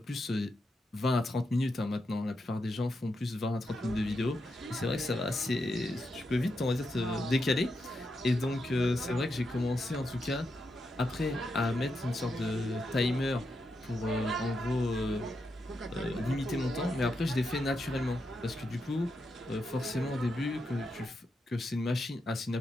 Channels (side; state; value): both; normal; correlation 0.84